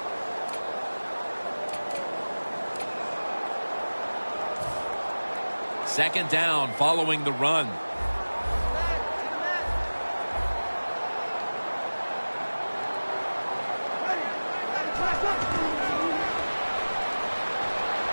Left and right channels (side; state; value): both; inverted; correlation -1.00